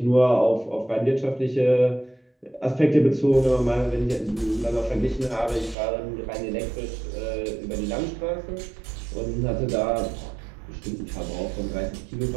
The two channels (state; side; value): drops out; left; at 5.8 s